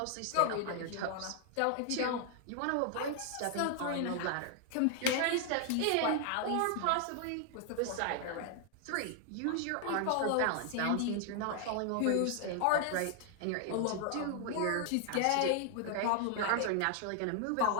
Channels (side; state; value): both; different; correlation 0.00